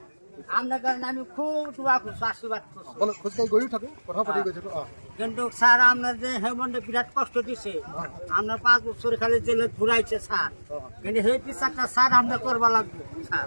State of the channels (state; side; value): inverted; both; correlation -1.00